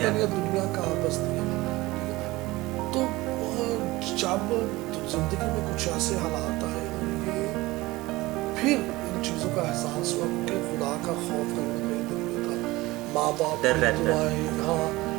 ہے دنیا کہاں بستی ہے, ٹھیک ہے. تو جب زندگی میں کچھ ایسے حالات آئے, اور یہ پھر ان چیزوں کا احساس ہوا, کیونکہ خدا کا خوف کہیں نہ کہیں دل میں تھا, ماں باپ کی دعائیں, ہاں,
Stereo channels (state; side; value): quieter; left; 20.0 dB